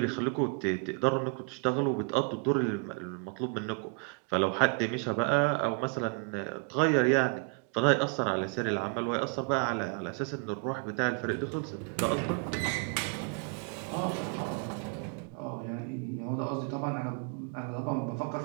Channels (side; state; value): left; quieter; 36.9 dB